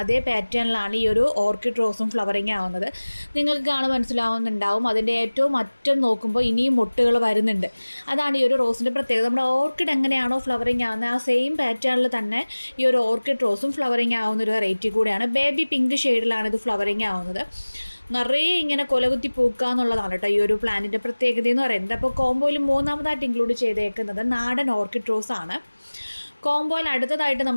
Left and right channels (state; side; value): inverted; both; correlation -1.00